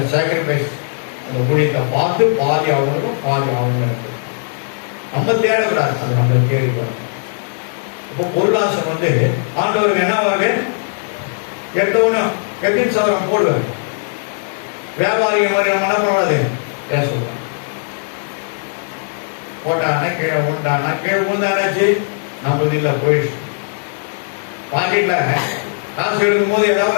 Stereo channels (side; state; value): right; silent; 67 dB below the other